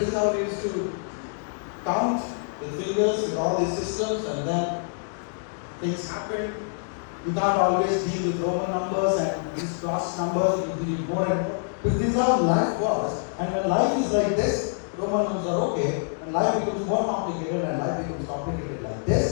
is how we used to count the figures with all these systems, and then things happen. You can't always deal with Roman numbers and these cross numbers. You deal more and more. Because this is how life was. And when life is like this, Roman numbers are okay. And life becomes more complicated, and life becomes complicated like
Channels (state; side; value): silent; right; digital silence